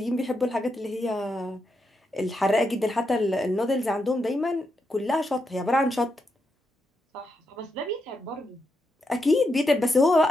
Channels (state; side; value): normal; both; correlation 0.83